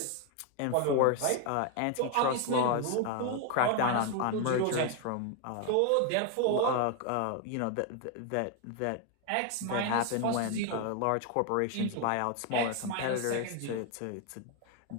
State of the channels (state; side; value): different; both; correlation 0.01